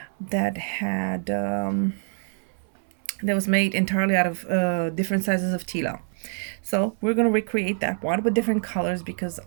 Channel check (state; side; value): silent; left; 61 dB below the other